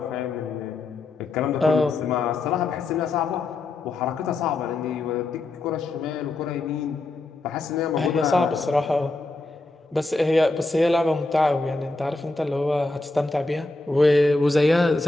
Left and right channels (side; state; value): right; quieter; 3.0 dB